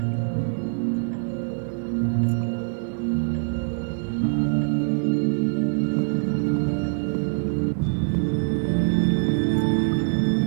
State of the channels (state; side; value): silent; left; 58 dB below the other